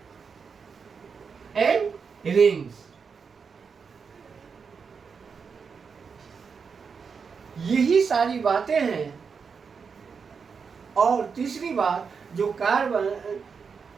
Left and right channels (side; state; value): left; quieter; 5.8 dB